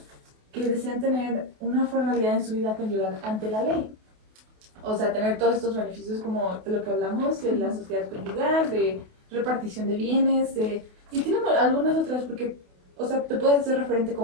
que desean tener una formalidad en su vida conyugal ante la ley. O sea, tener todos estos beneficios como de lo que hablamos, de la sociedad conyugal, de repartición de bienes, y tiene algunas otras porque, o sea, te puedes hacer referente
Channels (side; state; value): left; late; 28 ms